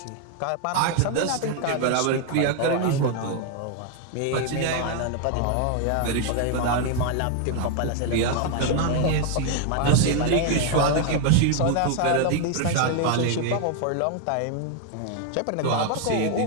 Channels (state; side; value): different; both; correlation 0.00